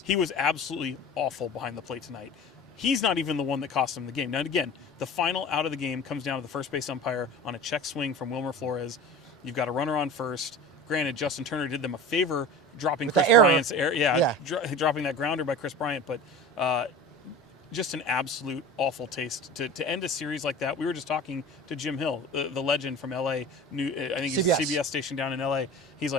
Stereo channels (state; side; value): normal; both; correlation 0.36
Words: He was absolutely awful behind the plate tonight. He's not even the one that cost him the game. Now, again, the final out of the game comes down to the first base umpire on a check swing from Wilmer Flores. You've got a runner on first. Granted, Justin Turner did them a favor dropping Chris Bryant's error. Dropping that grounder by Chris Bryant. But just an absolute awful taste to end a series like that. We were just talking to Jim Hill, the legend from L.A. I think he's a CBS station down in L.A. He's